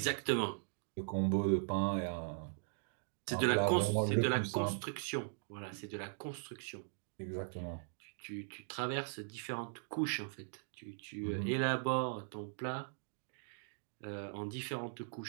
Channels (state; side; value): silent; left; digital silence